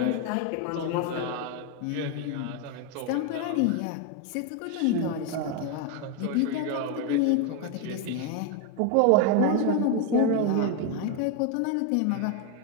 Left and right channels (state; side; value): different; both; correlation 0.01